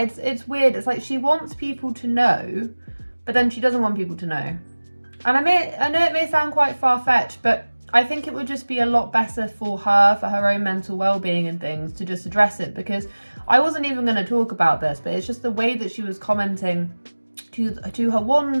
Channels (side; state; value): both; inverted; correlation -1.00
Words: It's weird. It's like she wants people to know, but then she doesn't want people to know. And I know it may sound quite far-fetched, but I think it would just be a lot better for her own mental well-being and things, to just address it. Because I wasn't even going to talk about this, but it's just the way that she was commenting to her